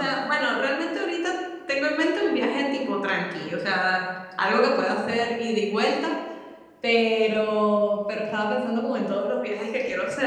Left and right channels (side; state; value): both; identical; correlation 1.00